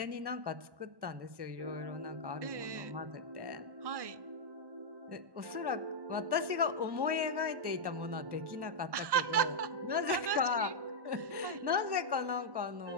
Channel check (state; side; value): late; left; 1.1 ms